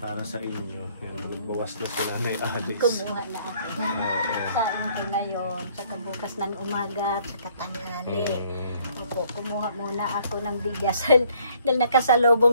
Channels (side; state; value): both; inverted; correlation -0.62